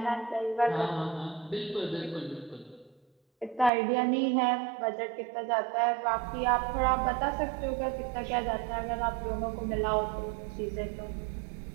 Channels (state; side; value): drops out; left; at 3.7 s